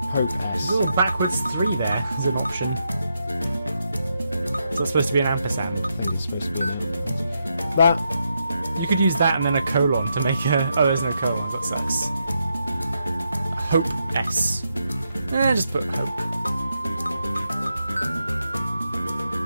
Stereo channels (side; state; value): both; inverted; correlation -0.82